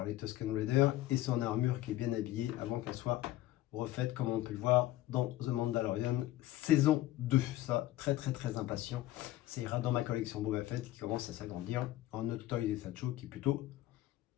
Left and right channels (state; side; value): quieter; right; 15.2 dB